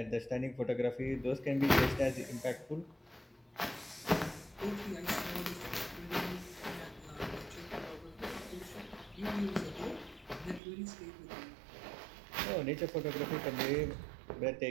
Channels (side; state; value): left; drops out; at 10.6 s